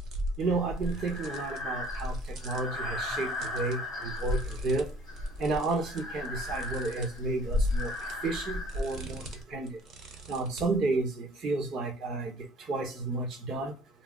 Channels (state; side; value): normal; both; correlation 0.53